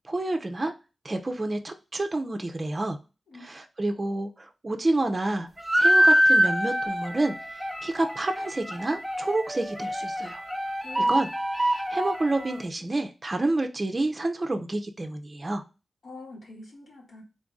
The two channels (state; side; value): normal; both; correlation 0.98